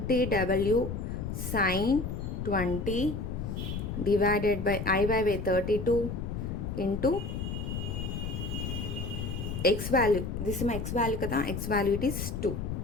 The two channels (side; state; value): left; noise; rumble, 4 dB below the sound